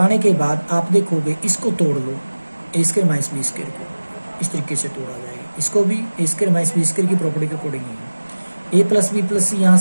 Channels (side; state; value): both; inverted; correlation -1.00